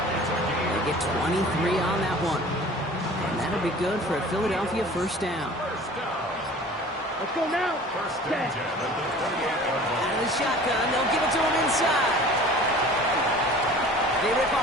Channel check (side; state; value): both; normal; correlation 0.44